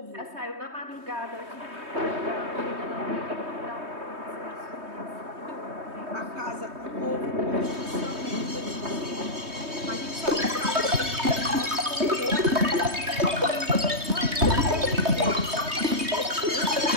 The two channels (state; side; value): late; left; 3.2 ms